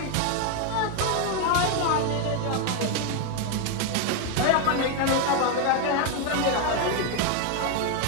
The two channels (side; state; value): both; different; correlation 0.01